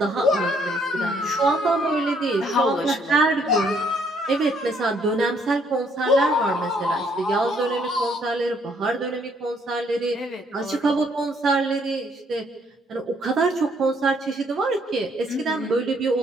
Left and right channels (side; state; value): both; normal; correlation 0.67